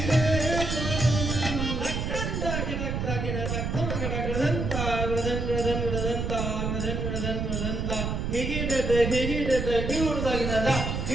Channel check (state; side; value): noise; right; rumble, 2 dB below the sound